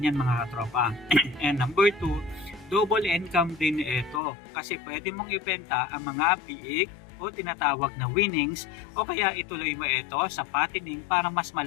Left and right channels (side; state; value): right; drops out; at 4.2 s